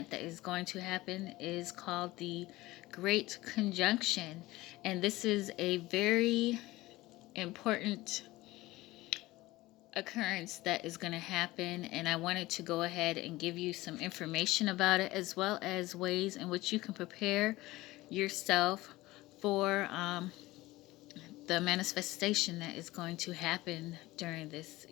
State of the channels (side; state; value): right; quieter; 18.8 dB